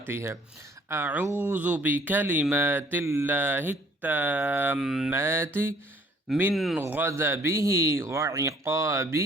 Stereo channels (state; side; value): normal; both; correlation 0.59